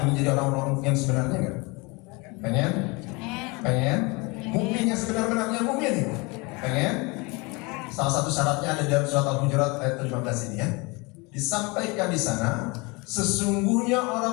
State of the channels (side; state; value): right; quieter; 27.1 dB